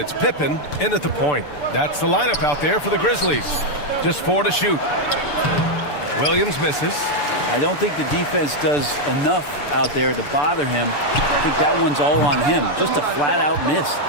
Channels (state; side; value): late; right; 6.8 ms